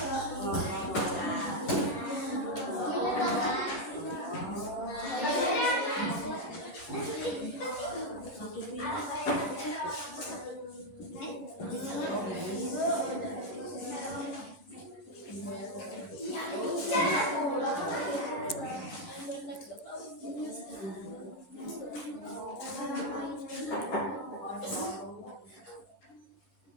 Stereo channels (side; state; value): right; late; 11 ms